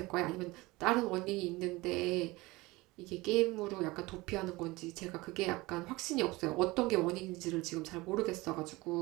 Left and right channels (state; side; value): quieter; left; 21.6 dB